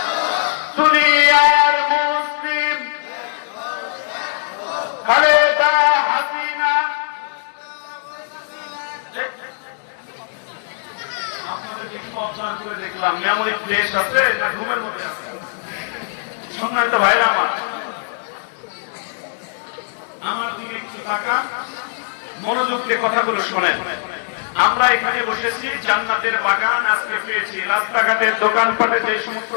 দুনিয়ার মুসলিম খালেদা হাসিনা। আপনাদেরকে একটু অবজার্ভ করে দেখলাম, মেমোরি ফ্রেশ আছে না ঘুমের মধ্যে আছে? সম্মানিত ভাইরা আমার দিকে একটু তাকান, মনোযোগ দিয়ে কথাগুলো শোনেন। আমরা এখানে বসেছি, জান্নাতের বাগান আজকে পেয়েছি। রাস্তাঘাটের দোকানপাটে যে সমস্ত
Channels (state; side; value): silent; right; digital silence